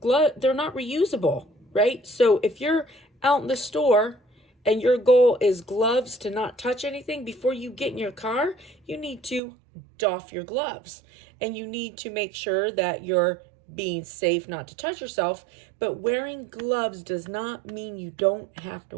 not reusable, right? So if you're out in the store and your goal is gloves to not touch anything, before you get in your car, you need to doff your gloves, and you need to make sure that you're being safe not to touch yourself. But wearing gloves does not mean you don't have to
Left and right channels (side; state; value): left; drops out; at 9.4 s